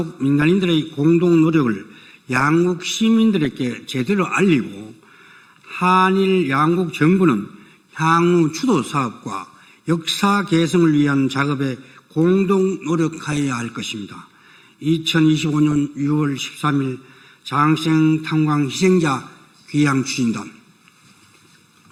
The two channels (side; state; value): both; identical; correlation 1.00